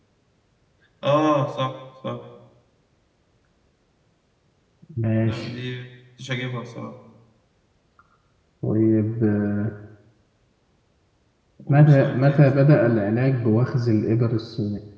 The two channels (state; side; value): identical; both; correlation 1.00